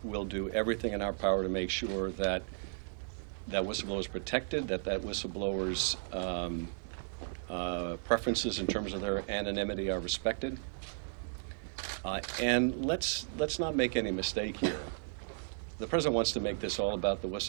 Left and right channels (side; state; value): left; silent; 55 dB below the other